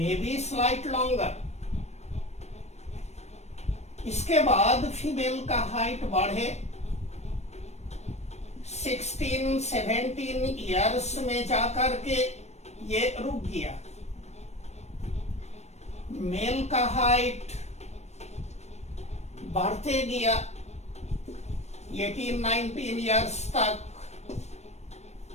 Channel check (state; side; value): late; right; 0.32 ms